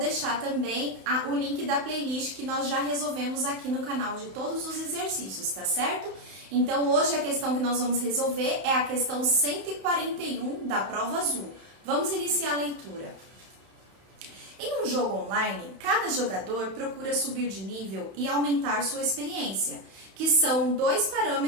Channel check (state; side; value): late; left; 31 ms